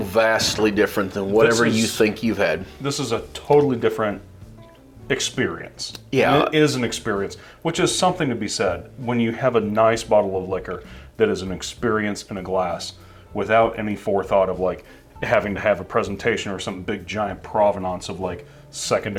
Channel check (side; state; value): both; identical; correlation 1.00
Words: different than whatever this is- you think you've had. This is a totally different experience. Yeah. It is an experience, which is something to be said. When you have a nice bottle of liquor that is an experience in a glass without any forethought of like having to have a presentation or some big giant provenance of like